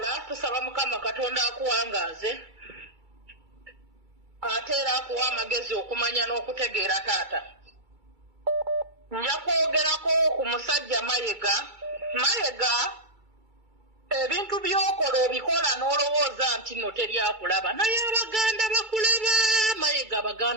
tusaba Mukama Katonda akuwangaaze ate era akuwa amagezi okumanya n'okutegeera taata. Nja kwogerako ku musajja Mayiga ebintu by'okola obikola n'olowooza nti nno teryakulaba naye Abaganda bakulaba Mayiga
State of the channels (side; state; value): left; late; 2.3 ms